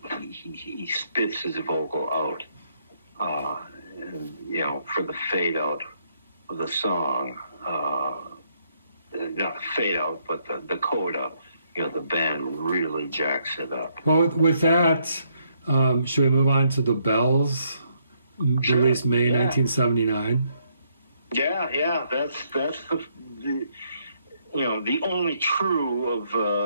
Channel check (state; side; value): inverted; both; correlation -0.73